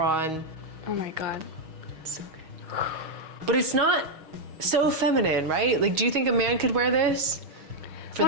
Oh my god. So good. But it's not so feminine, right? Like, do you think a man could wear this for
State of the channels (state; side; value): late; left; 6.3 ms